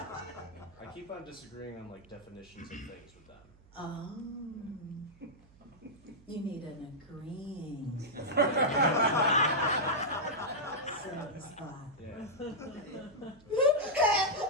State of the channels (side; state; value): right; noise; hum, 26 dB below the sound